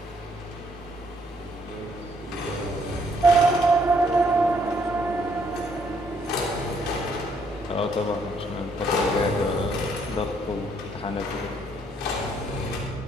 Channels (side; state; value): both; normal; correlation 0.68